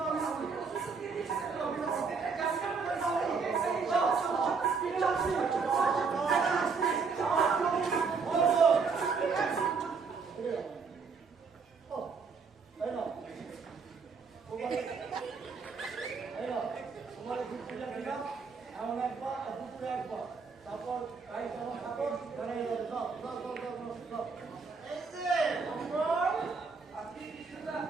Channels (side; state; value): left; quieter; 5.0 dB